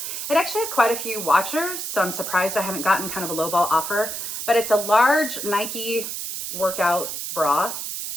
It actually has quite a few watchers, so I'm surprised I haven't gotten kind of a lowball offer, but it's a large Nike workout bra.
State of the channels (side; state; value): right; noise; hiss, 5 dB below the sound